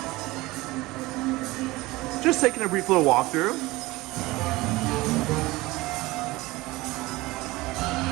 Just taking a brief little walkthrough.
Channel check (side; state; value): left; quieter; 20.5 dB